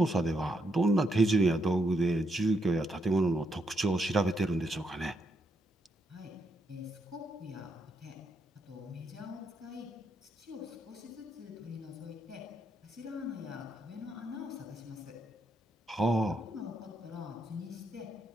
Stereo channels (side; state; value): both; normal; correlation 0.78